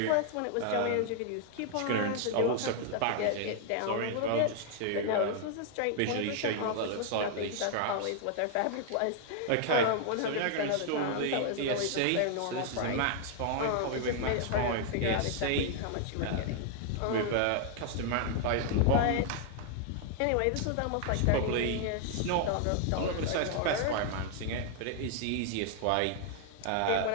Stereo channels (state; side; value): different; both; correlation 0.00